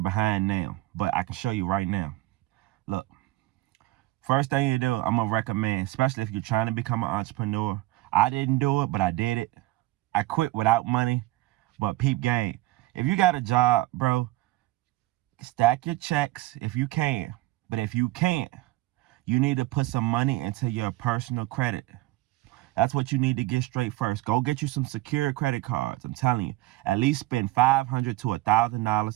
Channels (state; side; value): quieter; left; 18.0 dB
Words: now. But I can show you right now. Look. First thing you do, I'm going to recommend, especially if you're trying to become an entrepreneur. I didn't do it, but I did it. I quit without money, but peep game. If you got a job, bro, stack your checks if you can. But if you can't, you need to put some money into your personal credit. That's what you need to get straight first. Go get you some secured credit cards. I'm telling you, at least spend $500 to